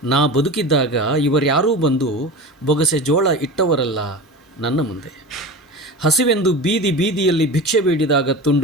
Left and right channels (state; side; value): normal; both; correlation 0.30